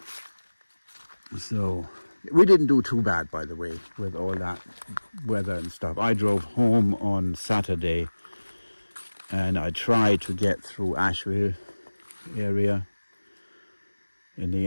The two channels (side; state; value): both; inverted; correlation -1.00